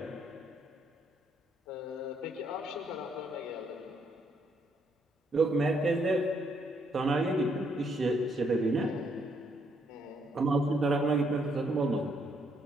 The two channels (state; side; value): normal; both; correlation 0.72